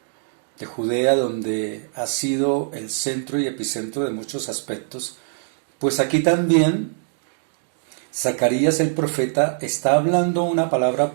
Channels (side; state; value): left; silent; digital silence